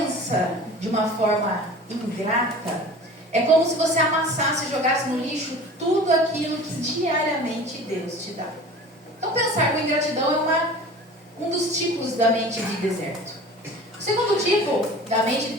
de uma forma ingrata, é como se você amassasse e jogasse no lixo tudo aquilo que diariamente Deus te dá. Então, pensar com ingratidão é um dos tipos da mente de deserto. O segundo tipo da mente de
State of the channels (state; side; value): normal; both; correlation 0.40